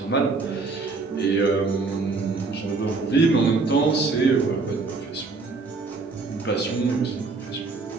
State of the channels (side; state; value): left; quieter; 4.0 dB